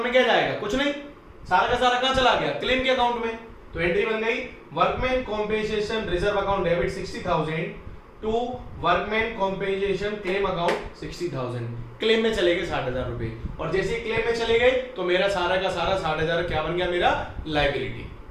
में क्या जाएगा, कुछ नहीं, सारा का सारा कहां चला गया, क्लेम के अकाउंट में। तो एंट्री बन गई, workman compensation reserve account debit 60,000 to workman compensation claim account 60,000। Claim में चले गए 60,000 रुपए, और जैसे ही क्लेम में चले गए तो मेरा सारा का सारा 60,000 क्या बन गया, मेरा लायबिलिटी।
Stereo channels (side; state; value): both; identical; correlation 1.00